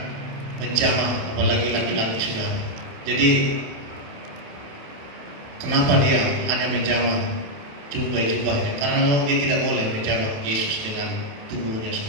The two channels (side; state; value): left; late; 28 ms